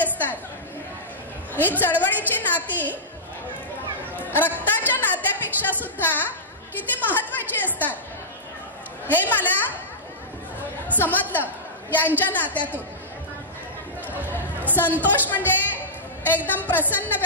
ही चळवळीची नाती रक्ताच्या नात्यापेक्षा सुद्धा किती महत्वाची असतात हे मला समजलं यांच्या नात्यातून. संतोष म्हणजे एकदम प्रसन्न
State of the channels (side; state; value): both; normal; correlation -0.15